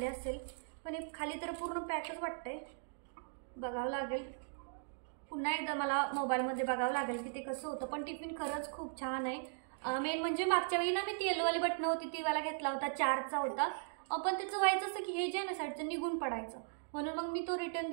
असेल, पण हे खाली तर पूर्ण पॅकच वाटतंय. बघावं लागेल पुन्हा एकदा, मला मोबाईलमध्ये बघावं लागेल की ते कसं होतं. पण टिफिन खरंच खूप छान आहे. मेन म्हणजे मागच्या वेळी ना मी ती येलोवाली बटणं होती ती वाला घेतला होता, 4चा होता. पण त्याचं व्हायचं असं की हे जे आहे ना साईडचं निघून पडायचं, म्हणून मग मी तो रिटर्न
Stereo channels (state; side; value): silent; left; digital silence